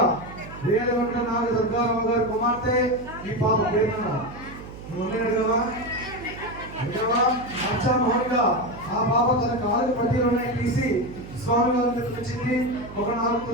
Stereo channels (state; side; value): noise; right; hum, 14 dB below the sound